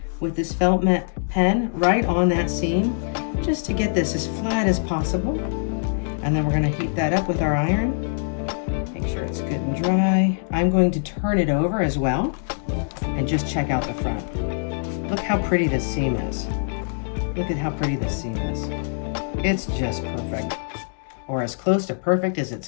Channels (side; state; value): right; silent; digital silence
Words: with this felt mat pen right on that seam, just to get this as flat as possible. And then we're going to heat that up with our iron. Make sure it's good and dry. I'm going to turn it over as well and just check out the front. Look how pretty this seam is. Look at how pretty this seam is. It's just perfect, or as close to perfect as it's